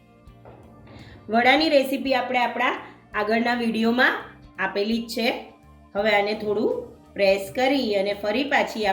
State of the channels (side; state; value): both; identical; correlation 1.00